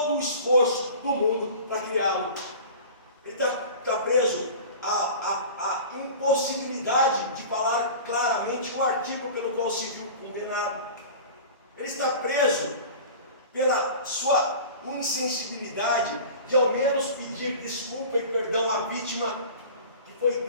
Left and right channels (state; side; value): inverted; both; correlation -0.38